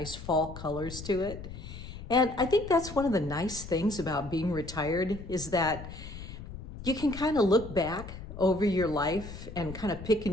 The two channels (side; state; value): left; noise; rumble, 12 dB below the sound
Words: fall colors to it. And I think that's one of the nice things about being retired is that you can kind of look back over your life and kind of pick